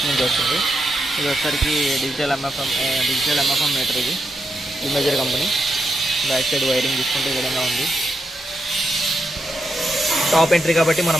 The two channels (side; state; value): both; normal; correlation 0.84